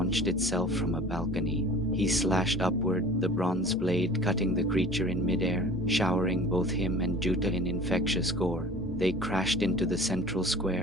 itself from a balcony. He slashed upward, the bronze blade cutting the creature in midair, showering both him and Juta in infectious gore. They crashed into the central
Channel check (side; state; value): both; normal; correlation 0.44